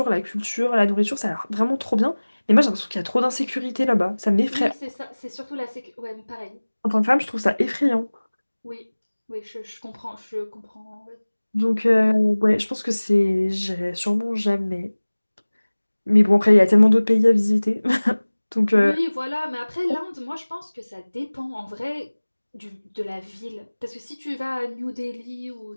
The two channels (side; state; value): both; inverted; correlation -1.00